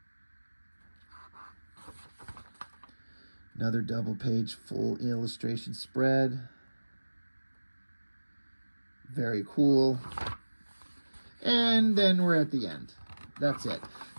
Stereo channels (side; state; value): both; inverted; correlation -1.00